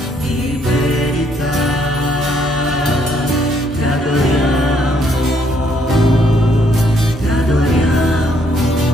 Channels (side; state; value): both; normal; correlation 0.69